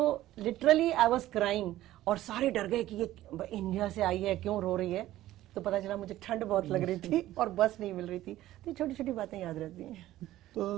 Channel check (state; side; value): quieter; left; 14.7 dB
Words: लिटरली आई वाज क्राइंग, और सारे डर गए कि ये इंडिया से आई है, क्यों रो रही है। तो पता चला मुझे ठंड बहुत लग रही थी और बस नहीं मिल रही थी। तो छोटी छोटी बातें याद रहती हैं।